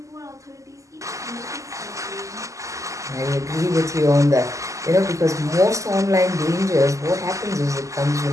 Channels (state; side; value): late; left; 0.16 ms